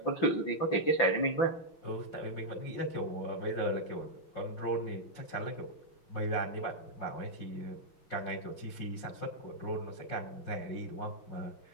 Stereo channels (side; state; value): right; late; 5.9 ms